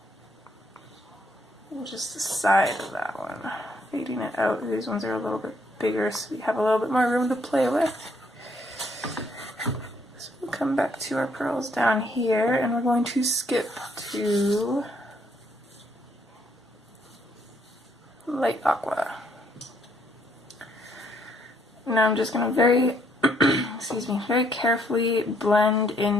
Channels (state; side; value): normal; both; correlation 0.69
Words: And just the side of that one. Fading it out. These ones are a little bit bigger so we have a little bit more room to play with. So we'll come back to our pearls down here and we're going to skip to light aqua. Now I'm just going to very carefully blend